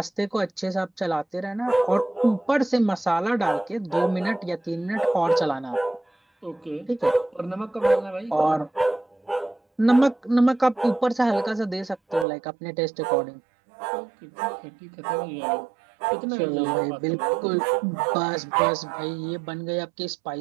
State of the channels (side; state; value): left; drops out; at 12.2 s